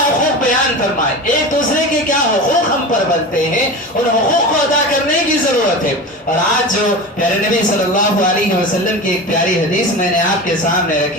بیان فرمائے، ایک دوسرے کے کیا حقوق ہم پر بنتے ہیں، ان حقوق کو ادا کرنے کی ضرورت ہے۔ اور آج جو پیارے نبی صلی اللہ علیہ وسلم کی ایک پیاری حدیث میں نے آپ کے سامنے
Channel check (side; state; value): both; normal; correlation 0.29